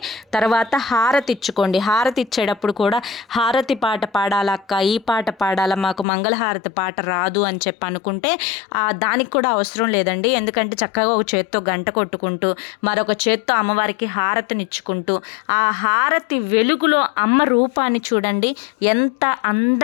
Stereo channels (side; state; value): right; drops out; at 6.1 s